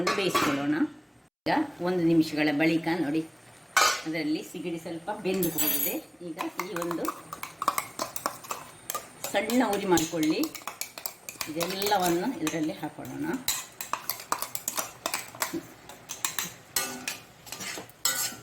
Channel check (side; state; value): both; identical; correlation 1.00